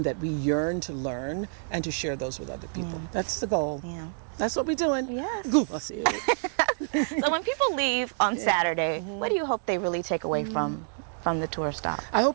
that we yearn to learn and to share those with other people. That's the goal. Yeah. That's what we're doing. Yes. Kumasi. So when people leave on Saturday, what do you hope they really take away from the tour stop? I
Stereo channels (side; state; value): left; silent; digital silence